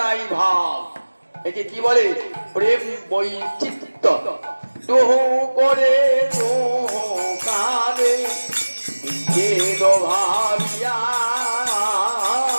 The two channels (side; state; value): both; inverted; correlation -1.00